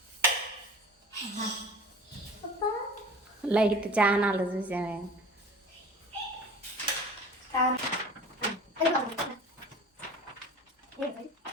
లైట్ ఛానల్ చూసామే.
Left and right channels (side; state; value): both; normal; correlation 0.40